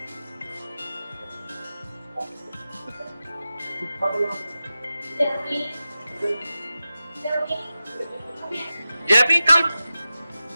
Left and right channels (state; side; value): inverted; both; correlation -0.94